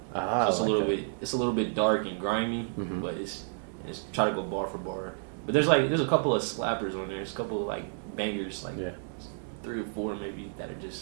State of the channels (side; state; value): left; silent; 57 dB below the other